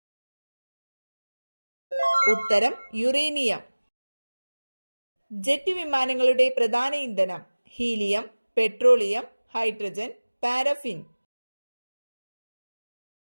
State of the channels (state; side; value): inverted; both; correlation -1.00